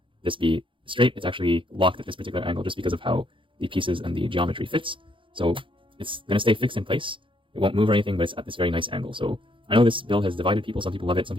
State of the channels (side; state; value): left; late; 0.25 ms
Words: this be straight, it's actually locked at this particular angle just because of how the pieces and the geometry fits. So it's going to stay fixed in place. It won't move or anything, but it's at this very nice angle. So I know this build has divided people. Some people love it, some